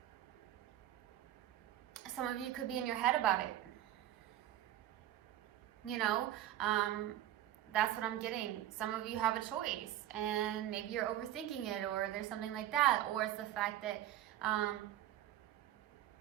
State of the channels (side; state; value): left; quieter; 12.7 dB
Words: Some of you could be in your head about it. You know, that's what I'm getting. Some of you have a choice, and maybe you're overthinking it, or there's something like that, or it's the fact that